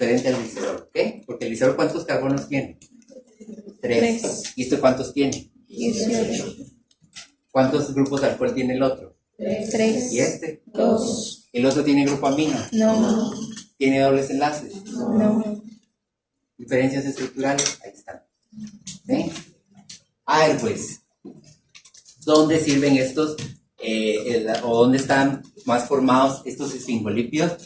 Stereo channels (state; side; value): identical; both; correlation 1.00